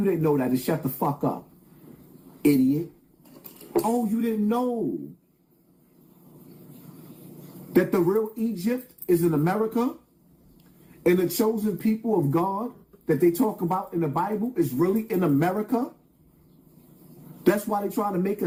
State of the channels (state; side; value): identical; both; correlation 1.00